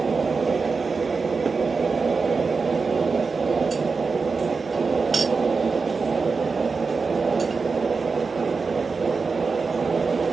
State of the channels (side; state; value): left; quieter; 4.6 dB